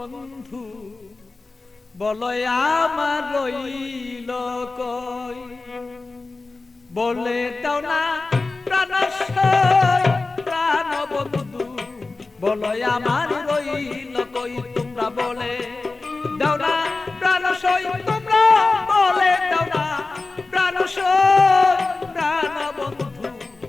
বলো আমার রইল কই। বলে দাও না প্রাণ প্রাণ বন্ধু, বলো আমার রইল কই। তোমরা বলে দাও না প্রাণ তোমরা বলে দাও না প্রাণ প্রাণ বন্ধু,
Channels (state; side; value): quieter; right; 3.6 dB